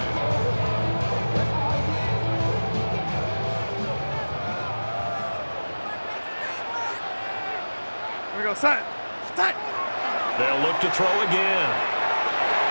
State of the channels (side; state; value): both; inverted; correlation -1.00